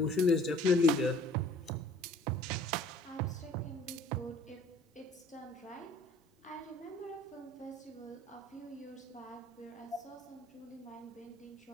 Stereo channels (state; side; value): normal; both; correlation 0.52